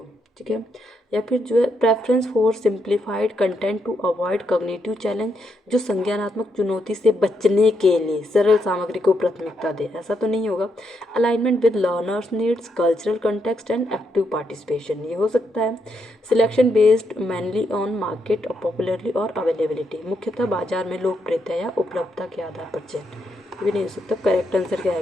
ठीक है, या फिर जो है preference for simplified content to avoid cognitive challenge, जो संज्ञानात्मक चुनौती से बचने के लिए सरल सामग्री को प्राथमिकता दे। ऐसा तो नहीं होगा। Alignment with learners needs, cultural context and active participation, ये हो सकता है। Selection based mainly on market popularly और अवेलेबिलिटी, मुख्यतः बाजार में लोकप्रियता या उपलब्धता के आधार पर चयन, भी नहीं हो सकता। करेक्ट आंसर क्या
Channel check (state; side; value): normal; both; correlation 0.79